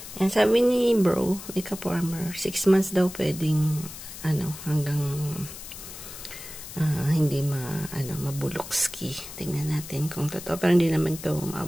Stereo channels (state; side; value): noise; left; hiss, 12 dB below the sound